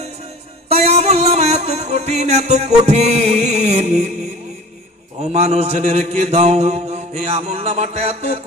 তাই আমলনামা এত কঠিন, এত কঠিন। ও মানুষ জেনে রেখে দাও, এই আমলনামাটা এত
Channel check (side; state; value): both; normal; correlation 0.41